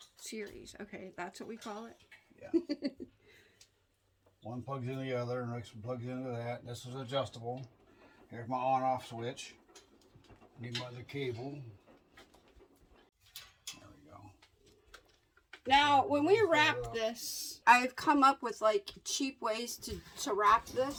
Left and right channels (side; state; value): both; identical; correlation 1.00